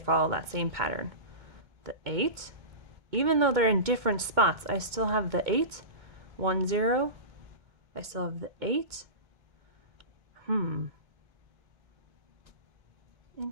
that same pattern. The 8, even though they're in different spots, I still have the 8, 1 0. I still have the 8.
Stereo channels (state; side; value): late; left; 2.2 ms